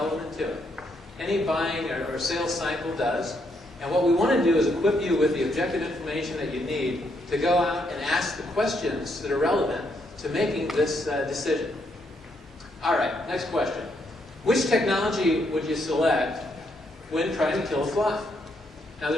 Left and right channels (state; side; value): normal; both; correlation 0.76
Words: to it. Any buying or sales cycle does. And what we want to do is equip you with the objective information that you need to go out and ask the questions that are relevant to making this decision. All right, next question. Which technology would you select when trying to kill a fly? Now,